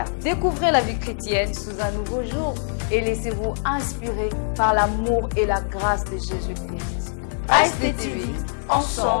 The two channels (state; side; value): silent; right; digital silence